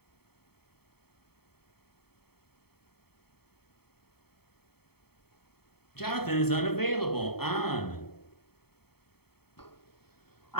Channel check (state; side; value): late; right; 0.96 ms